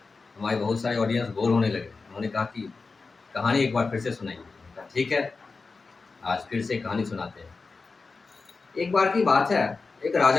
हमारे बहुत सारे ऑडियंस बोर होने लगे। उन्होंने कहा कि कहानी एक बार फिर से सुनाइए। मैंने कहा ठीक है, आज फिर से कहानी सुनाते हैं। एक बार की बात है, एक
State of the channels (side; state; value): right; quieter; 4.2 dB